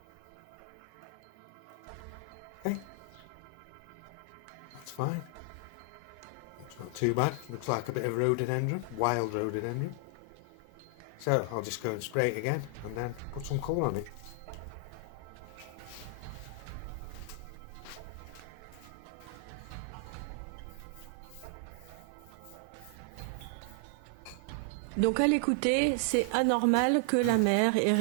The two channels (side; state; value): both; different; correlation 0.00